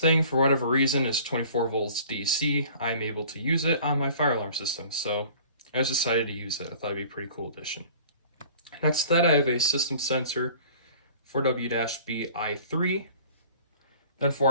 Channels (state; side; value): inverted; both; correlation -0.48